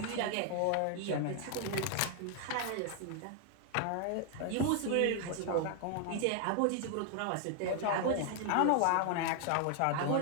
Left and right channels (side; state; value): both; different; correlation 0.00